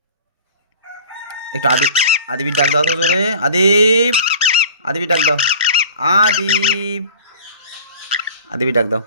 একটু আদিবির ডাক দাও তো জোরে। আদিপ, আদিবির ডাক দাও। আদিপ, আদিবির ডাক দাও।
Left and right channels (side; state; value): both; inverted; correlation -0.43